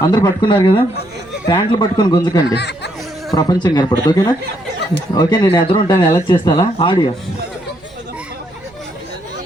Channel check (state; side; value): noise; right; rumble, 29 dB below the sound